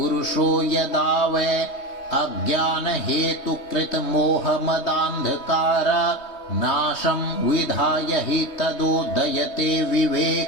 यदा वै अज्ञानहेतुकृतमोहमदान्धकार नाशम् विधाय हि तदोदयते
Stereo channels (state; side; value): late; right; 3.2 ms